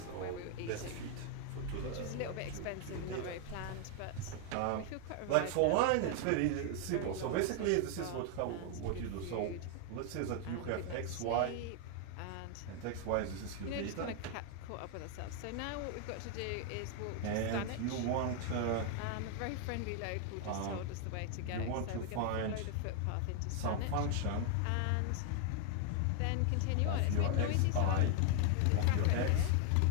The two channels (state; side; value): different; both; correlation 0.00